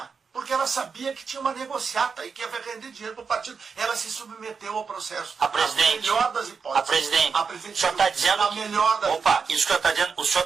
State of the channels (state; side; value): quieter; left; 5.6 dB